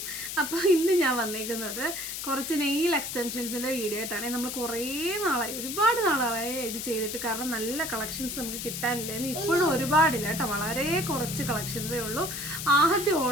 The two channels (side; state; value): left; noise; hiss, 6 dB below the sound